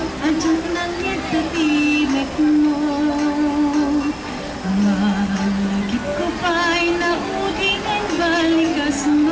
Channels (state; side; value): identical; both; correlation 1.00